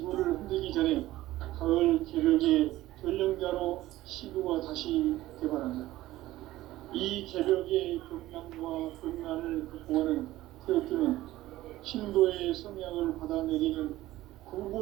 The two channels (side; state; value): left; quieter; 16.1 dB